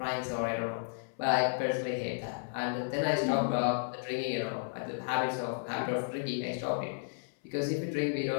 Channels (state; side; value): silent; right; 56 dB below the other